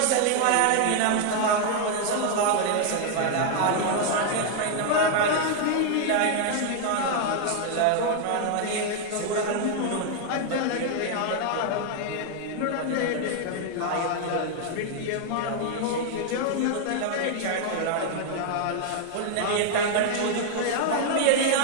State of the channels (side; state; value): both; different; correlation 0.00